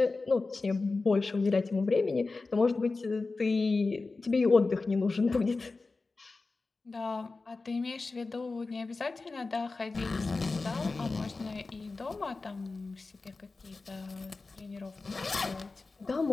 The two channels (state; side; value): quieter; right; 3.7 dB